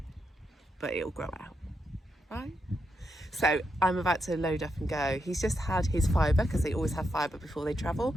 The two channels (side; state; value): both; normal; correlation 0.83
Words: But it'll grow out, right? So I'm about to load up and go. He's just had his fibre, because they always have fibre before they travel,